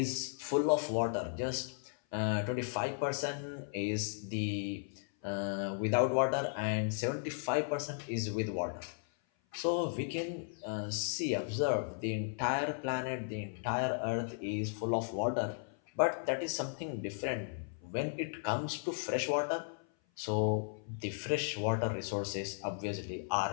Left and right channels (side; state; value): right; silent; 54 dB below the other